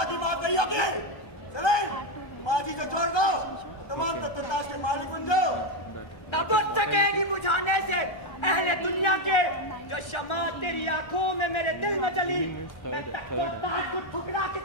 माफ नहीं होगी। चले, तुम आज ही से छोड़ दो, तमाम तख्ताज के मालिक बन जाओ। न बुझ सकेगी बुझाने से अहले दुनिया के जो शमा तेरी आंखों में मेरे दिल में जली। मैं तख्तो ताज को ठुकरा के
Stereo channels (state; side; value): late; right; 1.2 ms